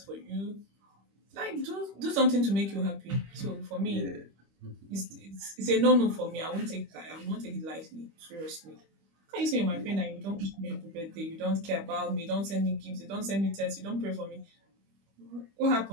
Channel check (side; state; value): left; late; 25 ms